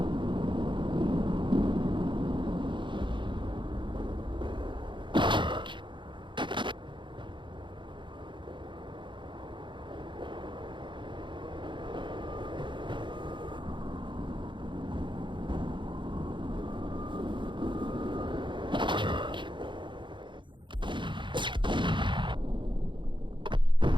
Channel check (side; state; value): left; late; 0.23 ms